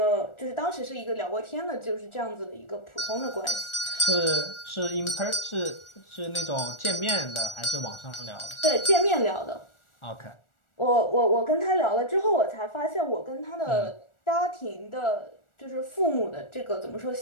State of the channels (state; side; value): late; right; 1.4 ms